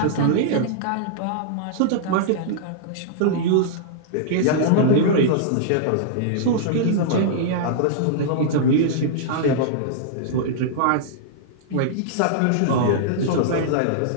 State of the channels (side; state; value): both; different; correlation -0.02